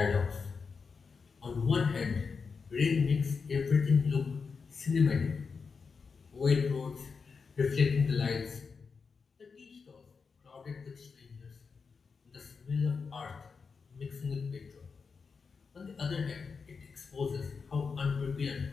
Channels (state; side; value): quieter; right; 5.2 dB